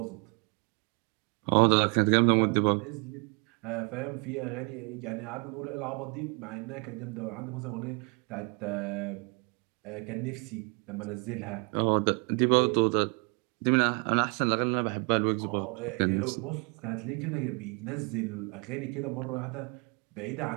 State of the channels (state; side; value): quieter; left; 33.4 dB